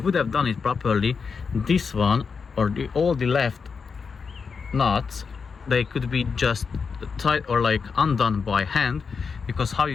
have done it properly, this one or all the left nuts, they could be just tight or like undone by hand, because how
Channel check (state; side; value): quieter; right; 5.5 dB